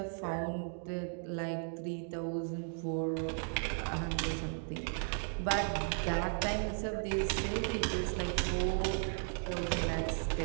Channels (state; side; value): silent; left; 54 dB below the other